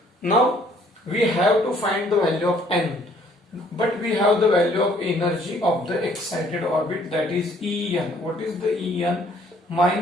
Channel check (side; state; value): both; normal; correlation 0.61